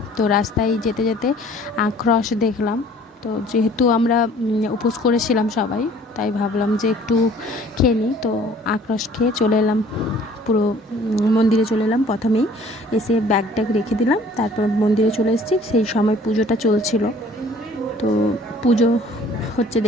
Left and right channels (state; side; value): normal; both; correlation 0.53